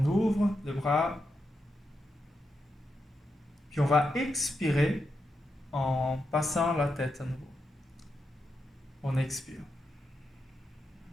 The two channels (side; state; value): both; normal; correlation 0.85